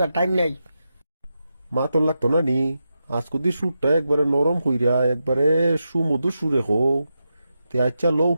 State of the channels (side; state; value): both; inverted; correlation -0.88